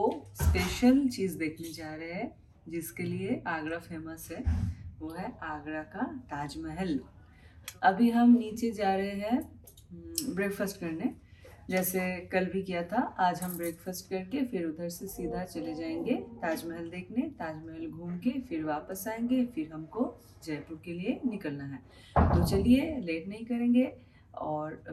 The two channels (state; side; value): identical; both; correlation 1.00